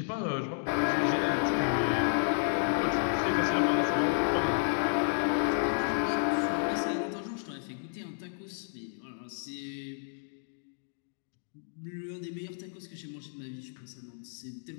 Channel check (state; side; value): silent; right; digital silence